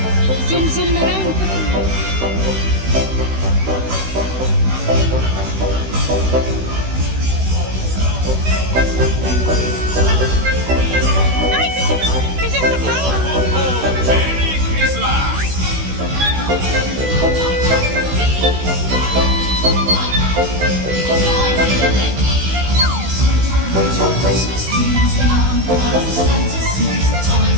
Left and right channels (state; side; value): late; left; 16 ms